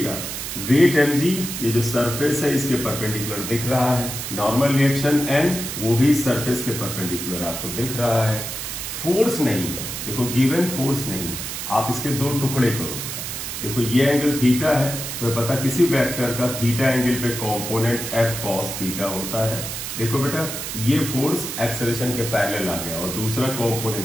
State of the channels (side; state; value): right; noise; hiss, 6 dB below the sound